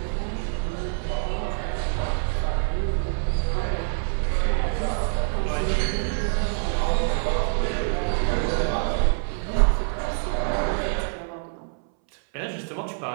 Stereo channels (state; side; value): silent; left; 61 dB below the other